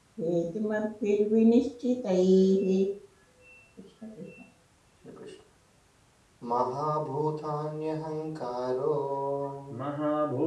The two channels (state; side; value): identical; both; correlation 1.00